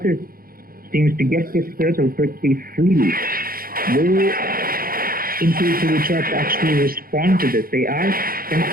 seems to get this turtle pretty freely. Will Intuitive We Trust actually respond to this? They are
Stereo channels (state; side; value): late; left; 0.42 ms